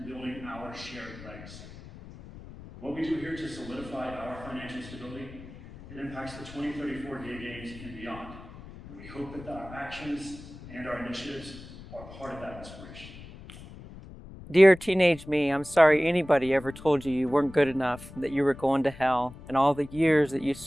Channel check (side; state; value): left; noise; rumble, 16 dB below the sound